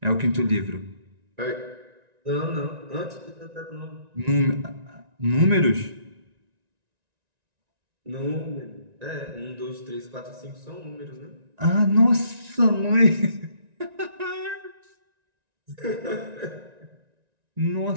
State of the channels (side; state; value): left; late; 1.9 ms